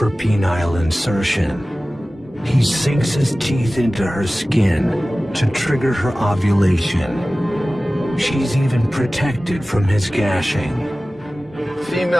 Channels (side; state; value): both; normal; correlation 0.97